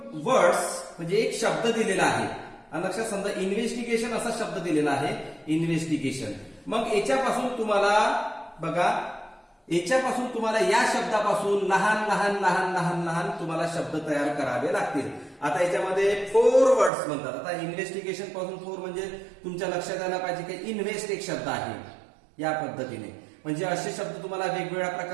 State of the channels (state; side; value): drops out; left; at 16.9 s